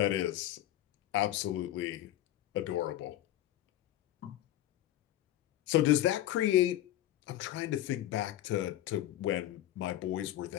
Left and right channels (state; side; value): quieter; right; 13.5 dB